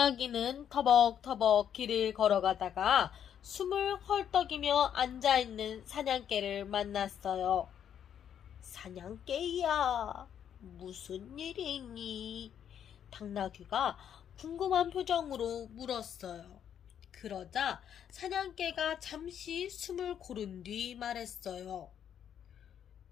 터벅터벅 길을 걸어가다가 숨을 헐떡이며 앉아있는 사냥개를 만났어요. 사냥개야, 무슨 일이 있니? 당나귀가 궁금한 표정으로 물었어요. 그러자 사냥개가 잠시 숨을 고른 뒤 말했어요.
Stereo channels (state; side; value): quieter; right; 9.1 dB